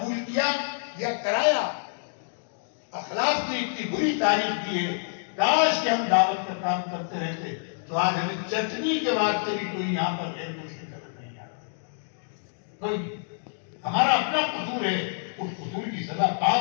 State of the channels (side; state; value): right; silent; digital silence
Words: کیا یا کرایا؟ اخلاق کی اتنی بری تاریخ کی ہے، کاش کہ ہم دعوت کا کام کرتے رہتے تو آج ہمیں چٹنی کے واسطے بھی کوئی یہاں پر غیر مسلم نظر نہیں آتا۔ کوئی ہمارا اپنا قصور ہے، اس قصور کی سزا